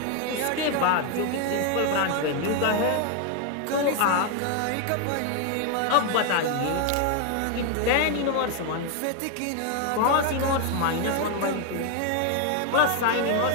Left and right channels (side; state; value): both; different; correlation 0.01